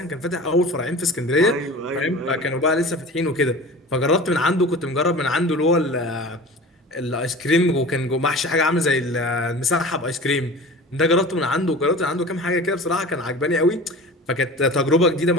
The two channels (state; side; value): normal; both; correlation 0.37